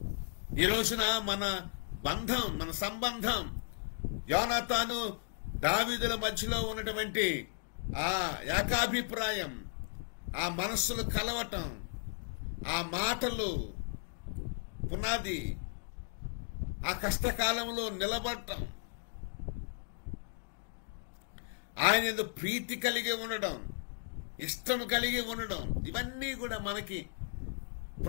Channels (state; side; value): silent; right; digital silence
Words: ఈ రోజున మన బంధం, మన సంబంధం, యోనాతాను దావీదుల మధ్యలో ఉన్నటువంటి ఆ ఏకాభిప్రాయం, ఆ మనస్సులు కలవటం, ఆ మాటలు పునాది, ఆ కష్టకాలంలో నిలబడటం, ఆయన యందు ప్రీతి కలిగి ఉండడం, ఇష్టం కలిగి ఉండడం, ఇవన్నీ కూడా మనకి